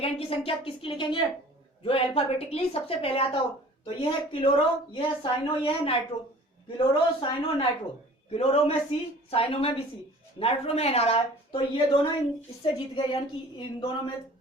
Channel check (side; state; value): both; normal; correlation 0.47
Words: की संख्या किसकी लिखेंगे, जो अल्फाबेटिकली सबसे पहले आता हो। तो ये है क्लोरो, ये है साइनो, ये है nitro. Chloro, cyano, nitro. Chloro में सी, साइनो में भी सी, नाइट्रो में एन आ रहा है। तो ये दोनों इससे जीत गए, यानी कि इन दोनों में